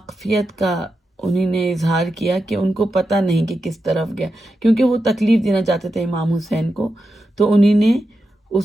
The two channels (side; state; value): both; normal; correlation 0.88